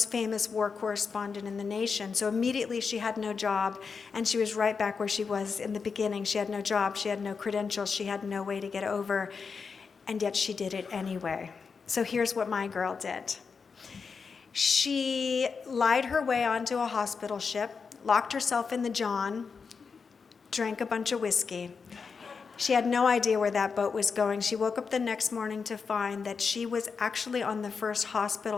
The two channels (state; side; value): quieter; right; 5.4 dB